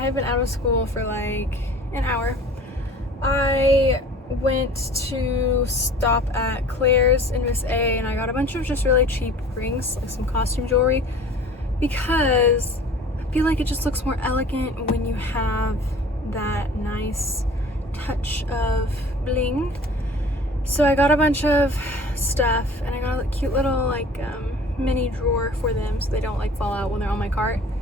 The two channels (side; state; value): both; normal; correlation 0.46